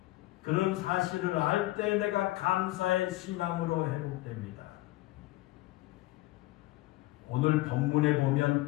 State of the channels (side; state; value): right; quieter; 18.4 dB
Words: 그런 사실을 알 때 내가 감사의 신앙으로 회복됩니다. 오늘 본문에 보면